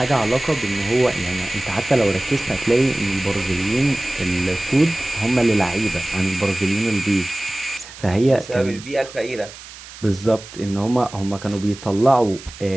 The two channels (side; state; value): right; noise; hiss, 16 dB below the sound